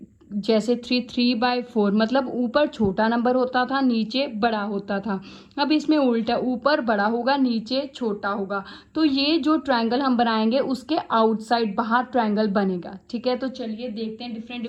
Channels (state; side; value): identical; both; correlation 1.00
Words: जैसे 3/4 मतलब ऊपर छोटा नंबर होता था, नीचे बड़ा होता था। अब इसमें उल्टा, ऊपर बड़ा होगा, नीचे छोटा होगा। तो ये जो ट्रायंगल हम बनाएंगे उसके आउटसाइड बाहर ट्रायंगल बनेगा। ठीक है, तो चलिए देखते हैं